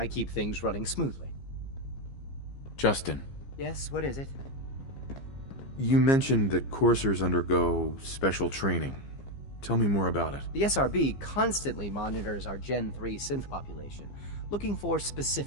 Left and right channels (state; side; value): late; right; 15 ms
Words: keep things running smoothly. Justin. Yes, what is it? You mentioned that coursers undergo special training. Tell me more about it. The SRB constantly monitors our Gen 3 synth population, looking for